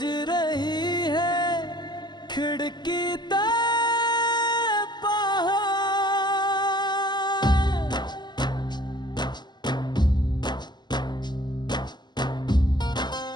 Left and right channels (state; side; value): late; right; 0.21 ms